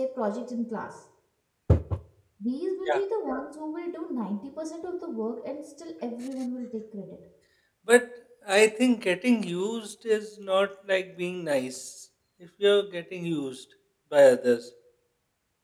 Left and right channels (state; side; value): identical; both; correlation 1.00